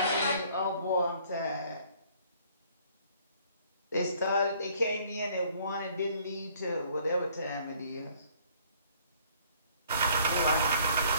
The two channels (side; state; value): both; inverted; correlation -0.59